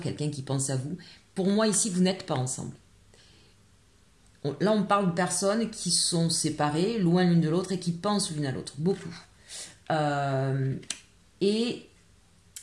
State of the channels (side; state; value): both; identical; correlation 1.00